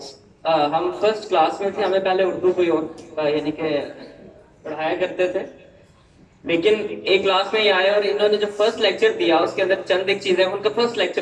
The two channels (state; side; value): identical; both; correlation 1.00